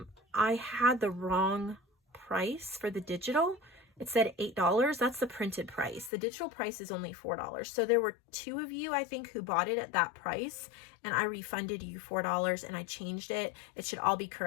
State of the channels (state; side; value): drops out; right; at 6.1 s